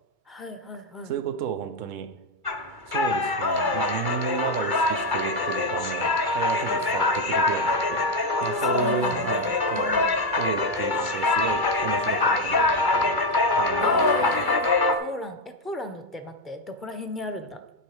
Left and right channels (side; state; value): left; late; 2.3 ms